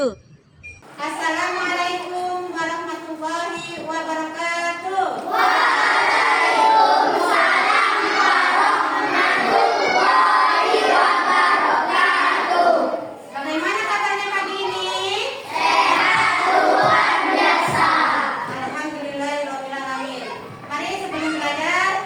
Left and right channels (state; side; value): identical; both; correlation 1.00